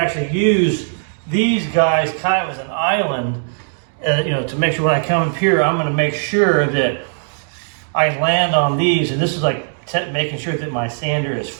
actually use these guys kind of as an island, to make sure when I come up here, I'm going to make sure that I land on these. And this is like making sure that my sander is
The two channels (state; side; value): silent; left; digital silence